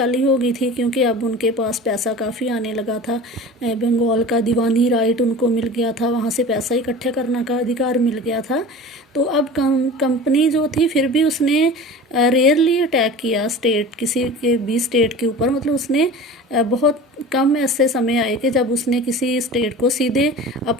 हो गई थी क्योंकि अब उनके पास पैसा काफ़ी आने लगा था। बंगाल का दीवानी राइट उनको मिल गया था, वहाँ से पैसा इकट्ठा करने का अधिकार मिल गया था। तो अब कंपनी जो थी फिर भी उसने रेयरली अटैक किया स्टेट, किसी के भी स्टेट के ऊपर, मतलब उसने बहुत कम ऐसे समय आए कि जब उसने किसी स्टेट को सीधे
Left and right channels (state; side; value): normal; both; correlation 0.37